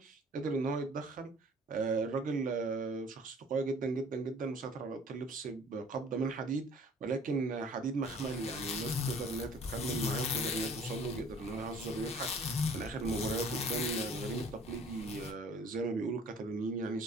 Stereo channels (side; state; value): both; normal; correlation 0.51